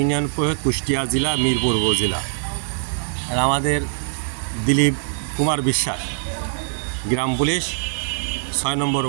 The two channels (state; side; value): silent; left; 57 dB below the other